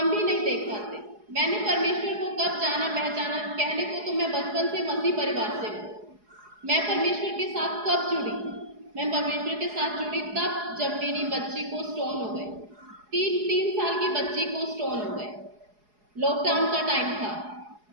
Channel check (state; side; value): late; left; 4.8 ms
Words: भी नहीं देख पाते। मैंने परमेश्वर को कब जाना पहचाना, कहने को तो मैं बचपन से मसीह परिवार से हूँ। मैं परमेश्वर के साथ कब जुड़ी, मैं परमेश्वर के साथ जुड़ी तब जब मेरी बच्ची को स्टोन हो गए, 3 साल की बच्ची को स्टोन हो गए। लॉकडाउन का टाइम था,